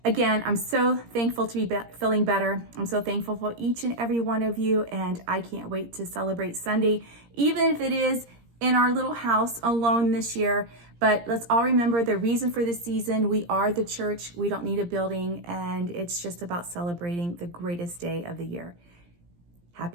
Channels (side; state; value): left; late; 17 ms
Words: again, I'm so thankful to be feeling better. I'm so thankful for each and every one of you, and I can't wait to celebrate Sunday, even if it is in our little house alone this year. But let's all remember the reason for this season. We are the church. We don't need a building, and it's just about celebrating the greatest day of the year.